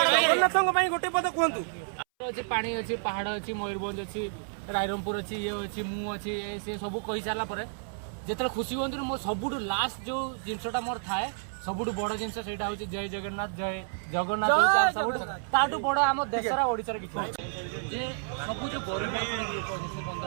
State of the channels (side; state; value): left; silent; 58 dB below the other